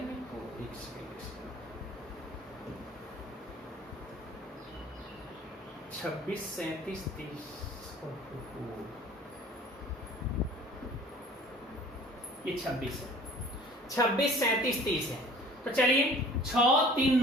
26 37 30, ये 26 है, 26 37 30 है। तो चलिए 6 3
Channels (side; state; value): both; normal; correlation 0.48